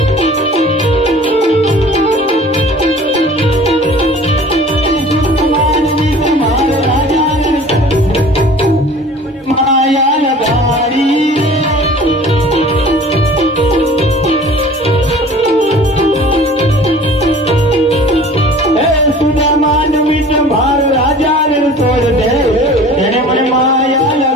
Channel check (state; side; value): normal; both; correlation 0.45